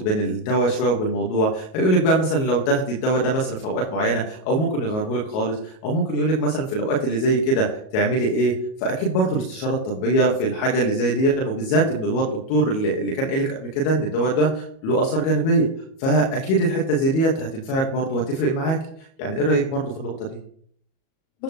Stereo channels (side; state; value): right; late; 37 ms